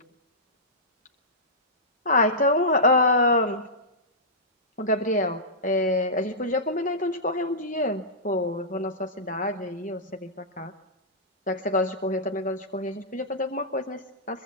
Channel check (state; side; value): normal; both; correlation -0.16